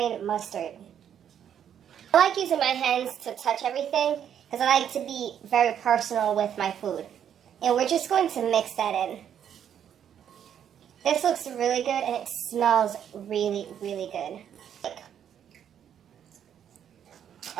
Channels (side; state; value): left; quieter; 9.2 dB